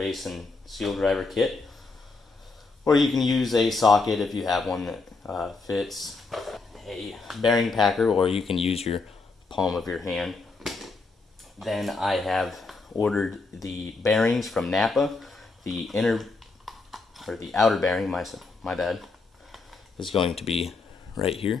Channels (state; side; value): quieter; right; 3.9 dB